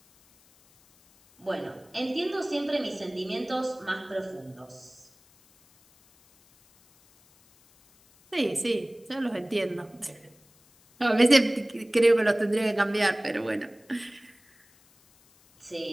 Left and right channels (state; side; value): noise; left; hiss, 30 dB below the sound